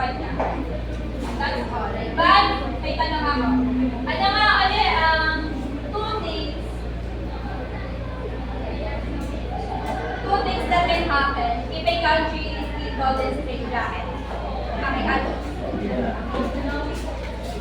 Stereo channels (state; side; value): identical; both; correlation 1.00